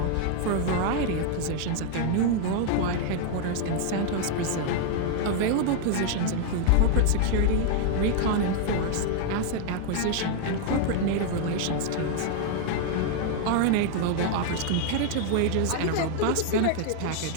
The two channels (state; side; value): different; both; correlation 0.00